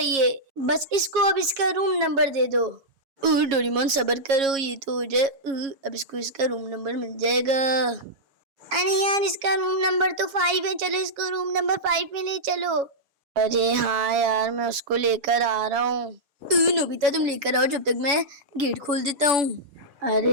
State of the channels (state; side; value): late; left; 7.3 ms